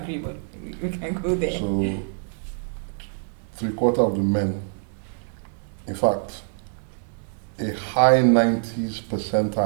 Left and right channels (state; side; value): silent; left; 62 dB below the other